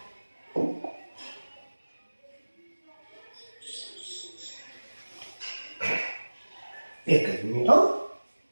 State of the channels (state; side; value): inverted; both; correlation -1.00